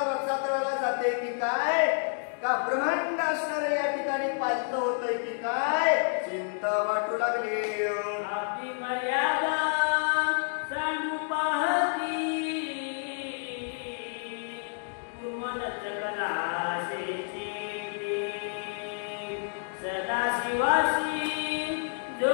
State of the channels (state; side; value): silent; right; digital silence